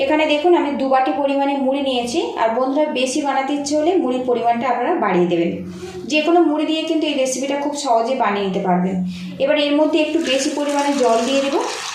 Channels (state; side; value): identical; both; correlation 1.00